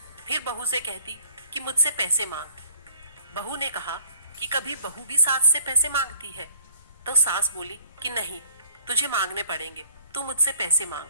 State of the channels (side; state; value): both; inverted; correlation -0.57